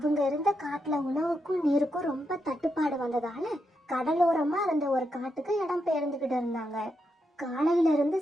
இருந்த காட்டுல உணவுக்கும் நீருக்கும் ரொம்ப தட்டுப்பாடு வந்ததால கடலோரமா இருந்த ஒரு காட்டுக்கு இடம் பெயர்ந்துகிட்டு இருந்தாங்க. காலையில இருந்து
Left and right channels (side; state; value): both; normal; correlation 0.83